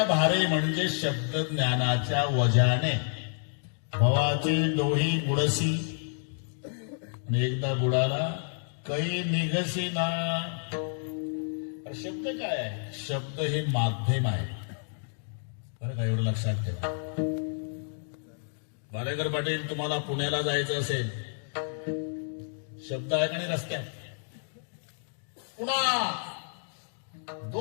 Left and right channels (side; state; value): right; silent; digital silence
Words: भारे म्हणजे शब्द ज्ञानाच्या वजाने भवाचे डोही बुडसी. आणि एकदा बुडाला कै निघसी ना. शब्द काय आहे? शब्द हे माध्यम आहे बरं का, एवढं लक्षात ठेवा. बालेकर पाटील, तुम्हाला पुण्याला जायचं असेल, शब्द आहे का नाही रस्त्यात? पुणा